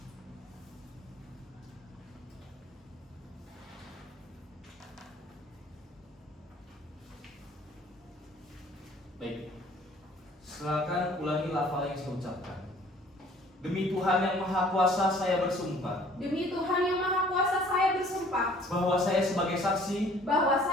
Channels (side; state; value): both; normal; correlation 0.54